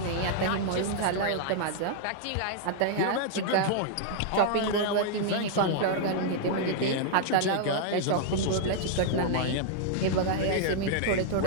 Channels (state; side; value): different; both; correlation -0.01